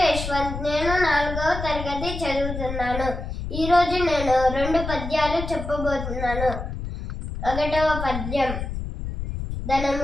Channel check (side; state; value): left; noise; rumble, 6 dB below the sound